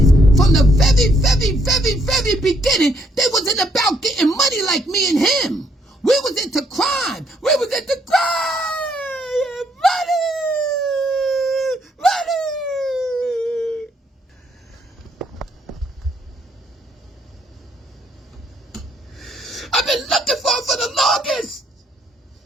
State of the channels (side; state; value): both; normal; correlation 0.70